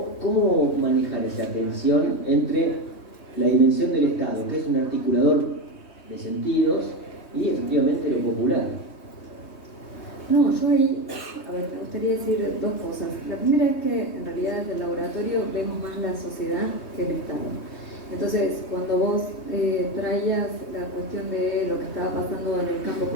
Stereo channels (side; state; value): right; late; 3.2 ms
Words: ¿cómo manejar esa tensión entre la dimensión del Estado, que es un articulador de sentidos, y efectivamente lo popular? No, yo ahí, a ver, me gustaría decir dos cosas. La primera es que en realidad desde el laboratorio vemos más la sociedad que el Estado. Entonces, cuando vos traías la cuestión de lo que estaba pasando en el campo